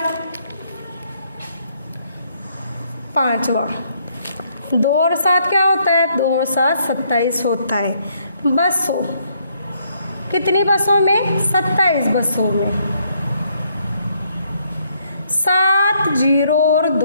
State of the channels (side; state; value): both; inverted; correlation -0.70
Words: 5वां 2 और 7 क्या होता है, 2 और 7 27 होता है। बसों, कितनी बसों में 27 बसों में। 7 0 और